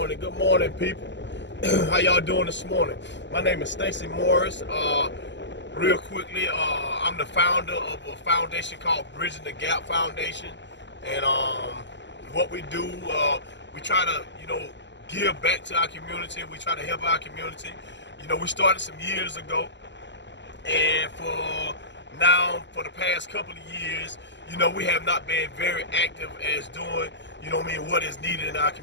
people. How y'all doing this morning? My name is Stacy Morris. Real quickly, I'm the founder of a foundation called Bridging the Gap Foundation, and what we do, we try to, give back to our community. We try to help our community. We started some years ago, and for the past couple of years, we have not been very active as doing, what is needed in our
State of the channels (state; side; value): late; right; 0.52 ms